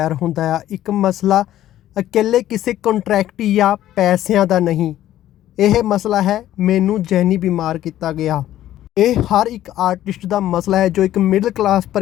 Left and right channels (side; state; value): right; quieter; 13.0 dB